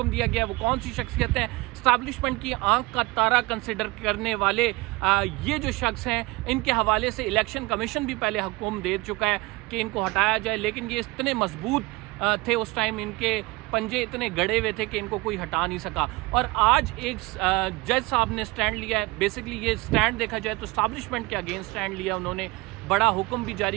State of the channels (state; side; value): quieter; left; 22.8 dB